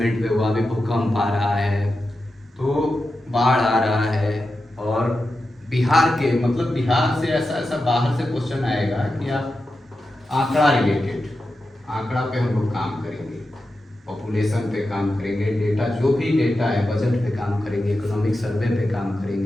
पे वहाँ भी भूकंप आ रहा है, तो बाढ़ आ रहा है, और बिहार के मतलब बिहार से ऐसा बाहर से क्वेश्चन आएगा कि आप आंकड़ा रिलेटेड, आंकड़ा पे हम लोग काम करेंगे, पॉपुलेशन पे काम करेंगे, डेटा जो भी डेटा है बजट पे काम करेंगे, इकोनॉमिक सर्वे पे काम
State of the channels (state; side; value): normal; both; correlation 0.91